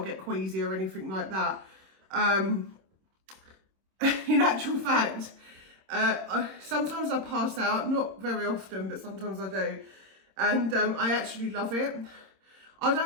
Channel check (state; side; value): late; left; 26 ms